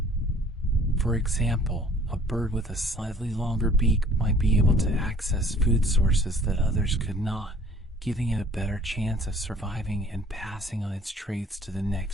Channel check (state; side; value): normal; both; correlation 0.54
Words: For example, a bird with a slightly longer beak might be able to access food sources that others could not, giving it a better chance of surviving and passing on its traits to the